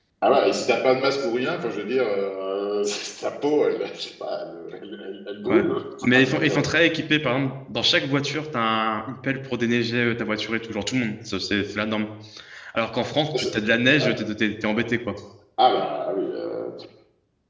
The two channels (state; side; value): identical; both; correlation 1.00